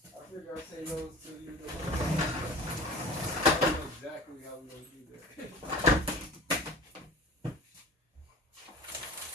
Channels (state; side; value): normal; both; correlation 0.39